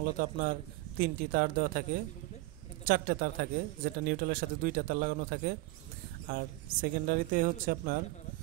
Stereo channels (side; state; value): left; quieter; 20.2 dB